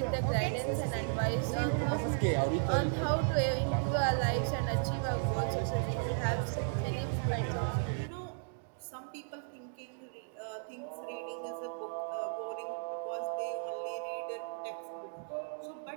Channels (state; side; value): silent; left; digital silence